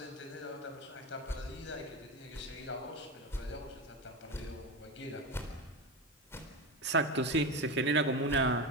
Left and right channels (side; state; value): both; normal; correlation 0.20